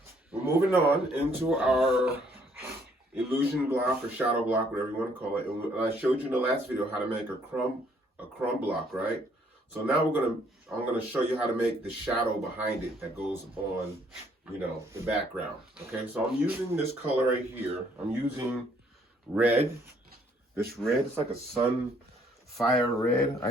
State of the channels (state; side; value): normal; both; correlation 0.65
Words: we're moving on into our illusion block or shadow block, whatever you want to call it. And I showed you in the last video how to make a crumb block, right? So now I'm gonna show you how to make the shadow behind it that goes on, the background. Okay, so I'm using this color right here. I'm using red. This red, it's like a sunfire red,